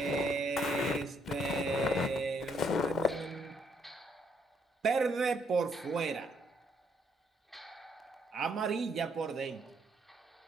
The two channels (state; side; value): normal; both; correlation 0.72